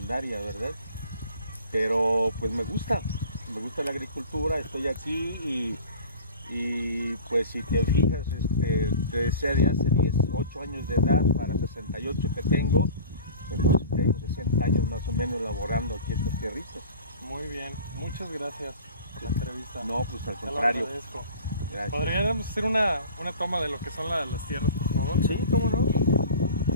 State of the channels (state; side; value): inverted; both; correlation -0.40